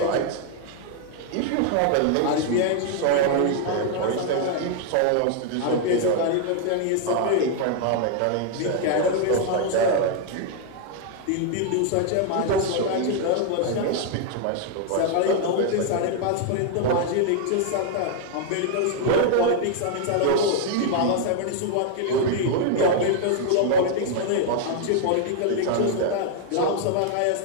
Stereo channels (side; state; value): both; different; correlation 0.00